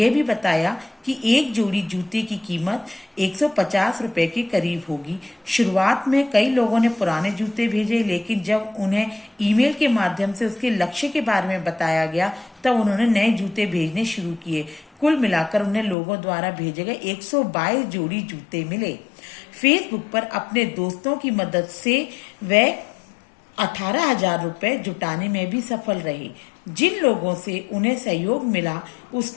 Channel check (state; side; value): drops out; right; at 16.0 s